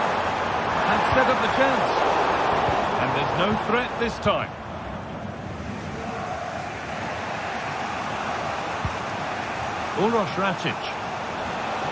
And set up the chance. And there's no threat this time. Uroš Rakic.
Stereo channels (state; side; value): identical; both; correlation 1.00